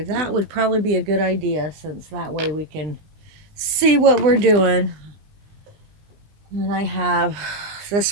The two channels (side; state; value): left; late; 20 ms